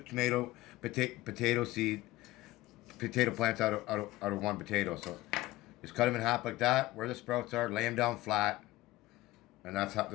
potato plants out of one potato. So just cut them in half like that, where the sprouts are, lay them down flat, and that's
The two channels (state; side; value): quieter; right; 18.0 dB